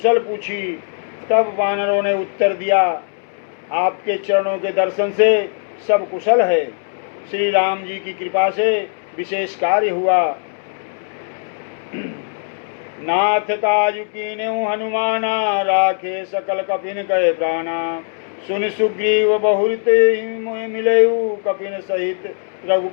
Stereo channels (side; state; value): right; silent; digital silence